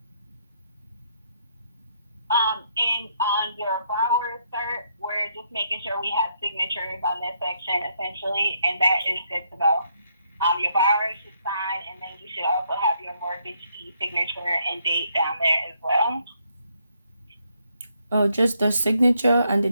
And on your borrower cert, we're just making sure we have signatures on this section essentially, and that is good to go. Your borrower should sign, and then you should also have your mortgagee signature and date down there as well. Oh, just the signature and the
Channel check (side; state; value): both; inverted; correlation -0.74